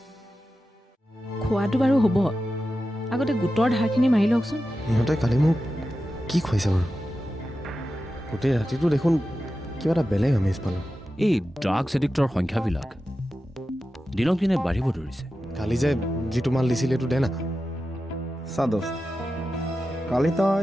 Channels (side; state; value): both; normal; correlation 0.92